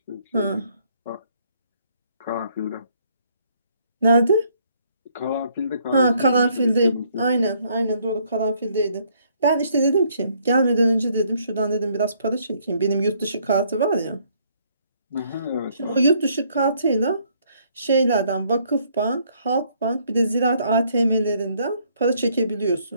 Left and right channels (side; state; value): both; inverted; correlation -0.67